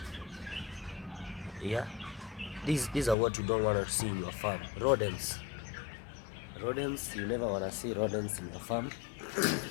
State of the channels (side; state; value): right; drops out; at 3.2 s